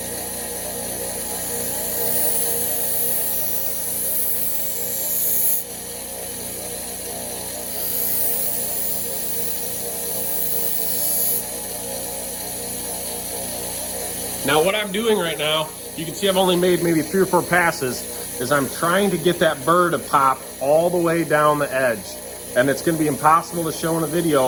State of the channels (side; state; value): both; identical; correlation 1.00